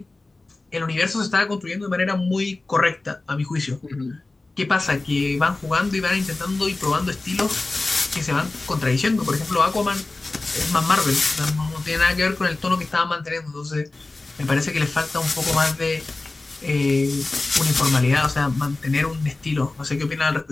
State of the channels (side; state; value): right; quieter; 3.2 dB